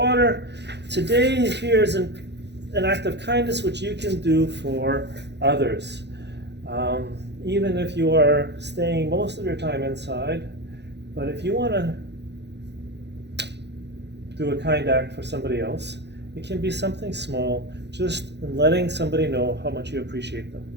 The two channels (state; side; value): late; left; 0.50 ms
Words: Today, here's an act of kindness which you can do for others. Even if you are staying most of your time inside, but if you want to do a kind act for somebody else, it can be something small, just letting somebody know how much you appreciate them.